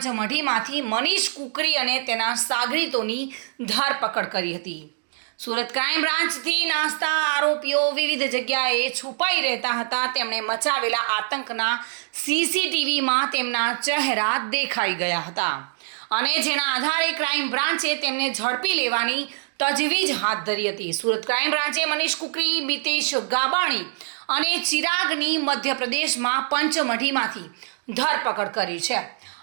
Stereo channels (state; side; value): silent; left; digital silence